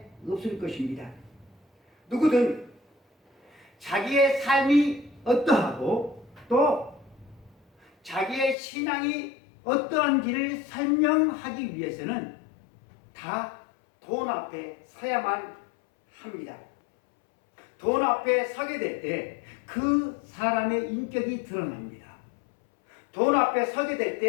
없을 것입니다. 누구든 자기의 삶이 어떠하고 또 자기의 신앙이 어떠한지를 설명하기 위해서는 다 돈 앞에 서야만 합니다. 돈 앞에 서게 될 때 그 사람의 인격이 드러납니다. 돈 앞에 서게 될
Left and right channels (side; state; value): right; drops out; at 8.6 s